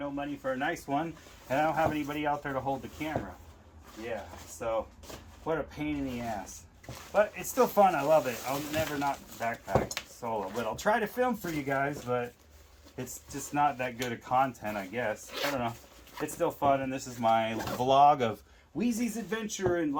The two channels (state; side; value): identical; both; correlation 1.00